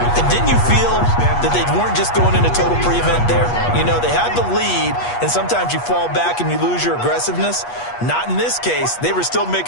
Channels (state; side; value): late; right; 8.3 ms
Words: And didn't you feel that they weren't just going into total prevent there? You know, they had the lead, and sometimes you fall back and you lose your aggressiveness. Not in this case. They were still